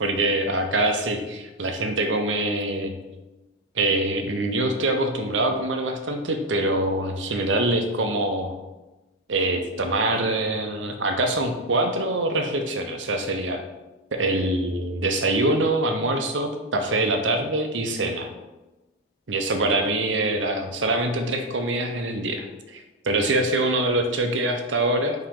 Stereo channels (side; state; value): both; normal; correlation 0.04